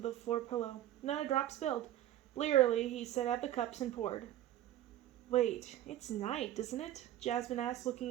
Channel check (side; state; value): left; quieter; 13.1 dB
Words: floor pillow. Not a drop spilled. Blearily, he set out the cups and poured. Wait, it's night, isn't it? Jasmine asked,